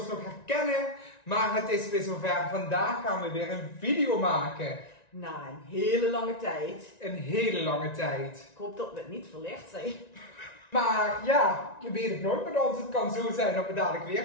nog herkennen, maar het is weer zover. Vandaag gaan we weer een video maken. Na een hele lange tijd. Een hele lange tijd. Ik hoop dat we het niet verlegd zijn. Maar ja, je weet het nooit met ons. Het kan zo zijn dat we dadelijk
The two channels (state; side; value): late; right; 1.9 ms